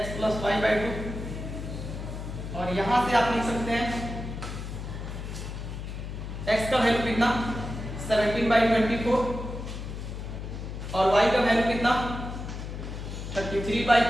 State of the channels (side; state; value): left; noise; hum, 7 dB below the sound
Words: प्लस y/2 और यहां से आप लिख सकते हैं x का वैल्यू कितना 17/24 और y का वैल्यू कितना